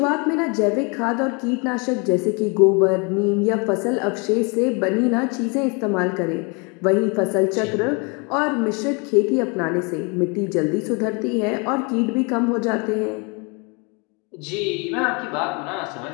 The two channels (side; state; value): right; quieter; 31.9 dB